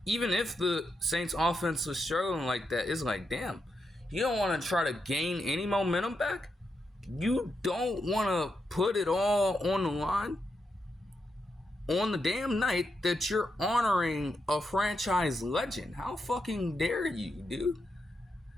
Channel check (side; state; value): both; normal; correlation 0.84